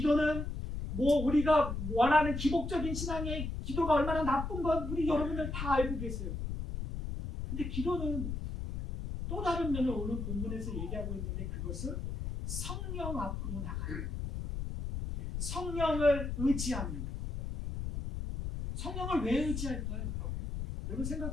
우리가 원하는 기복적인 신앙의 기도가 얼마나 나쁜 건 우리 여러분들 다 알고 계세요. 근데 기도는 또 다른 면을 오늘 본문에서 얘기하고 있는데 그것은 성령 앞으로 나가요. 성령을 의지합니다. 성령을 왜 의지할까요? 여러분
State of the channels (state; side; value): noise; left; rumble, 4 dB below the sound